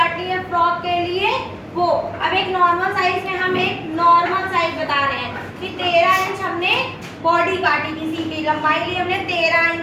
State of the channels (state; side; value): identical; both; correlation 1.00